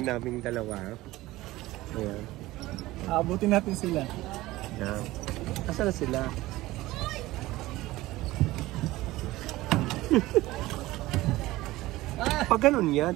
naming dalawa. Ayan. Aabutin natin sila. Ayan. Asa na sila? Pag ganun yan.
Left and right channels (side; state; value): left; quieter; 18.0 dB